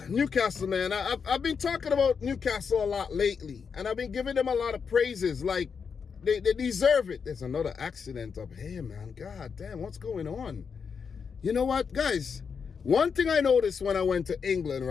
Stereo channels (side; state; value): right; quieter; 6.1 dB